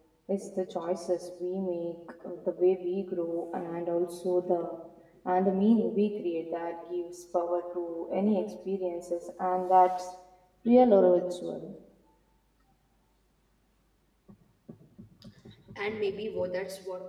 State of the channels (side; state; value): both; identical; correlation 1.00